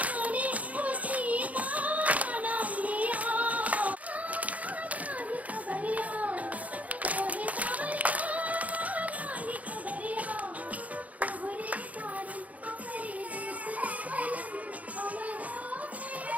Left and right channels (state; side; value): late; left; 0.071 ms